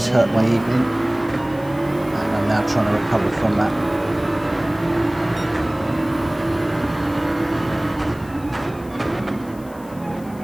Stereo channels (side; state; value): left; noise; hiss, 24 dB below the sound